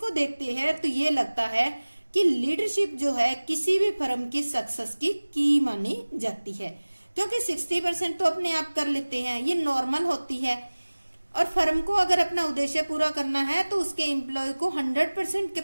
देखते हैं तो ये लगता है कि लीडरशिप जो है किसी भी फर्म की सक्सेस की मानी जाती है, क्योंकि 60% तो अपने आप कर लेते हैं, ये नॉर्मल होती है। और फर्म को अगर अपना उद्देश्य पूरा करना है तो उसके एम्प्लॉय को 100%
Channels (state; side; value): inverted; both; correlation -1.00